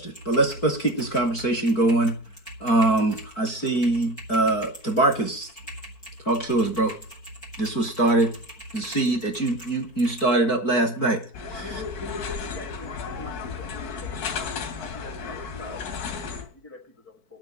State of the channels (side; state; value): right; late; 4.5 ms